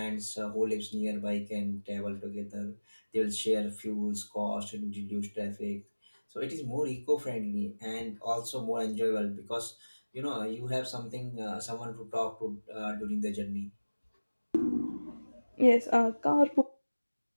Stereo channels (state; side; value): inverted; both; correlation -1.00